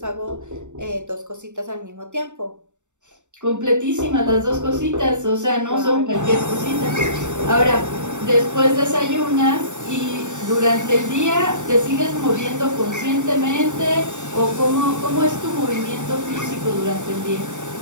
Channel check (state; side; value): late; left; 0.84 ms